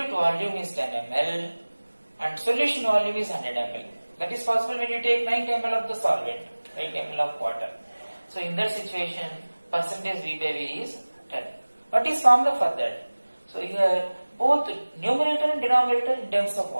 volume is 10 ml and solution volume is 100 ml, that is possible when you take 90 ml of the solvent, 90 ml of water. So in that situation, percentage V by V is 10. What is formula for that? So here, both numerator and denominator in terms of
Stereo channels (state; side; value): inverted; both; correlation -1.00